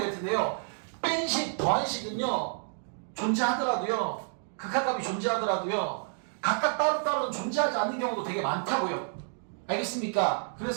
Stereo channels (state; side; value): silent; left; 58 dB below the other